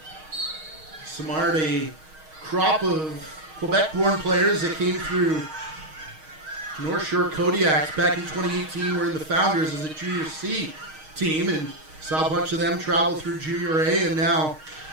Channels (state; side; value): late; left; 6.4 ms